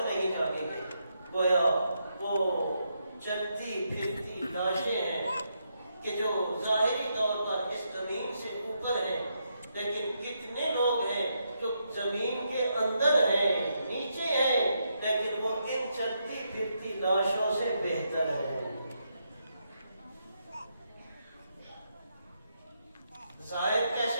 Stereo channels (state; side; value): inverted; both; correlation -0.80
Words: نہیں جاگیں گے، گویا وہ چلتی پھرتی لاشیں ہیں کہ جو ظاہری طور پر اس زمین سے اوپر ہیں، لیکن کتنے لوگ ہیں جو زمین کے اندر ہیں، نیچے ہیں، لیکن وہ ان چلتی پھرتی لاشوں سے بہتر ہیں. ظاہر